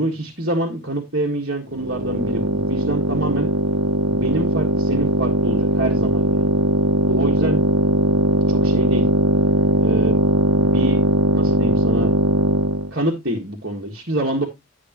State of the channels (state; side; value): normal; both; correlation 0.13